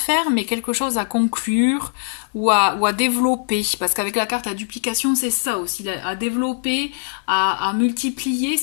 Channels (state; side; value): silent; right; digital silence